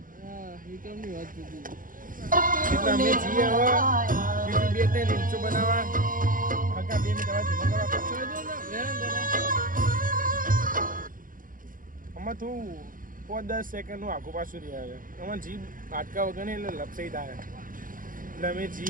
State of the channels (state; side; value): late; left; 0.40 ms